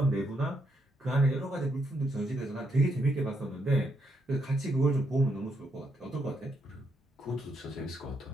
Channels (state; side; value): normal; both; correlation 0.77